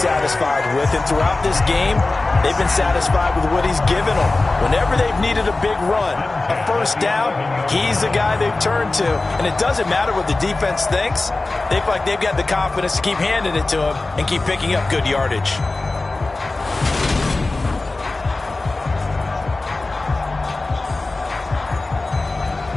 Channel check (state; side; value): quieter; right; 3.2 dB